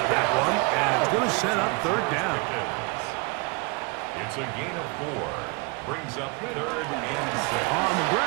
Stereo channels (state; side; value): quieter; left; 29.3 dB